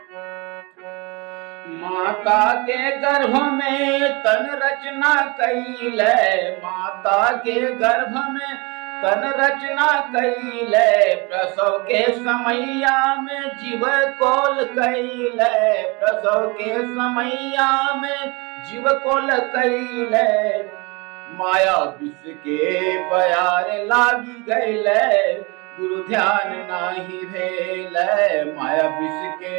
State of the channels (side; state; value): left; quieter; 27.8 dB